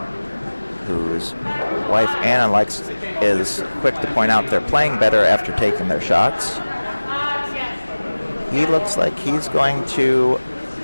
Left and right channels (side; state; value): both; inverted; correlation -1.00